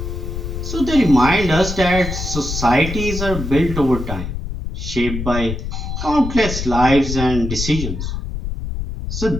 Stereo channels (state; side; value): noise; left; rumble, 5 dB below the sound